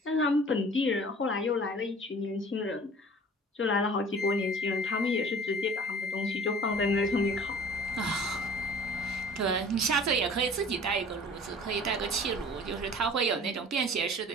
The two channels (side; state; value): both; normal; correlation 0.46